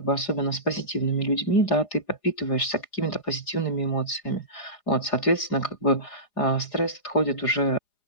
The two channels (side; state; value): right; late; 4.9 ms